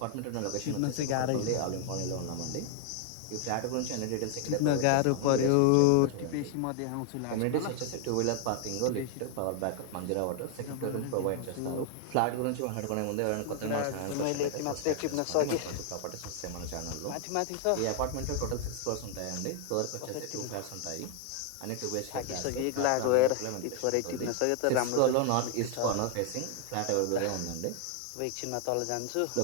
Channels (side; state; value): both; different; correlation 0.00